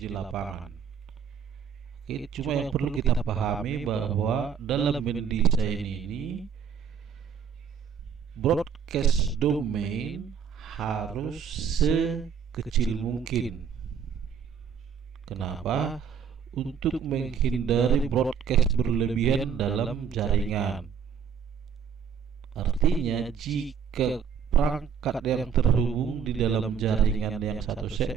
di lapangan. Oke, cuma yang perlu kita pahami bahwa dalam mendesain ini broadcast domain harus sekecil mungkin. Kenapa? Untuk menghindari broadcast berlebihan dalam jaringan. Artinya jika perangkat yang terhubung di dalam jaringan yang satu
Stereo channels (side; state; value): left; quieter; 7.2 dB